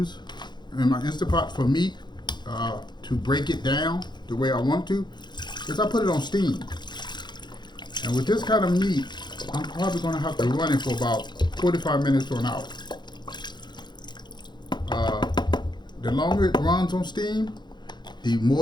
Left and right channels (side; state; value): right; late; 0.21 ms